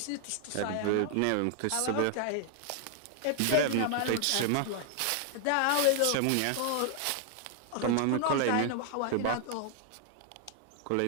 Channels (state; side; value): different; both; correlation 0.00